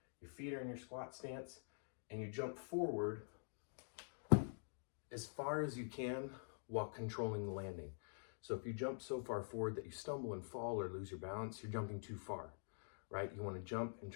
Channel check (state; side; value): silent; right; digital silence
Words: Your feet are in your squat stance and you jump forward as far as you can while controlling the landing. So if you jump so far forward that you stumble and fall or lose your balance, you're jumping too far, right? You want to jump and